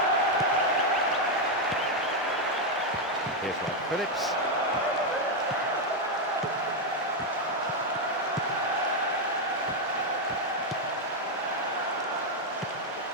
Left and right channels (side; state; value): both; normal; correlation 0.02